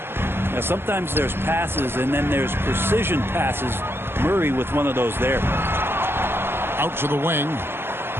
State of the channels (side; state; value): left; late; 0.11 ms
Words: Now, sometimes there's passes, and then there's precision passes. Murray with one of those there. Out to the wing.